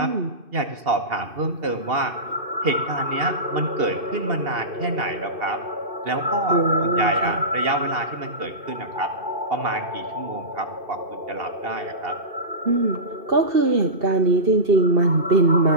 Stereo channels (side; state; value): left; late; 2.8 ms